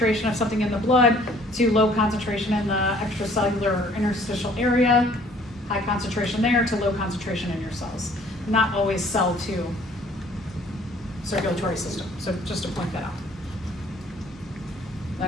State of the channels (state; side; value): normal; both; correlation 0.57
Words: of something in the blood, to low concentration in the extracellular or interstitial area, high concentration there to low concentration in your cells. Not always cell to circulatory system, so just to point that out.